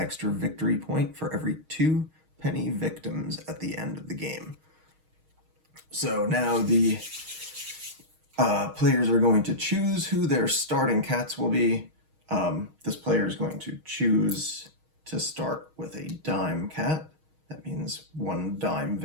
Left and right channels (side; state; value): left; late; 6.4 ms